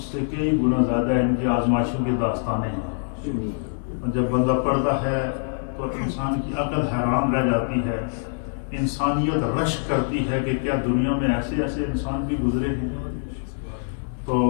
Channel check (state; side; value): silent; right; digital silence